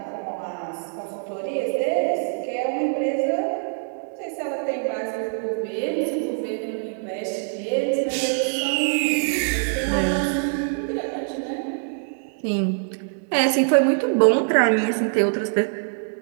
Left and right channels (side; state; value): left; silent; digital silence